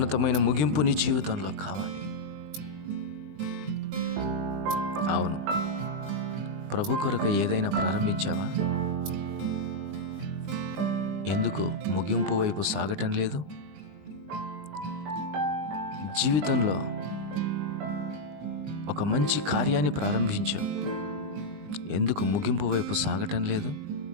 ముగింపు నీ జీవితంలో కావాలి. అవును, ప్రభు కొరకు ఏదైనా ప్రారంభించావా? ఎందుకు ముగింపు వైపు సాగటం లేదు? జీవితంలో ఒక మంచి కార్యాన్ని ప్రారంభించావు, ఎందుకు ముగింపు వైపు సాగటం లేదు?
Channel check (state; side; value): late; left; 20 ms